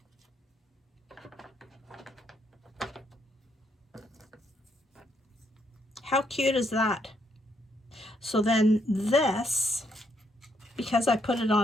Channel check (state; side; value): normal; both; correlation 0.74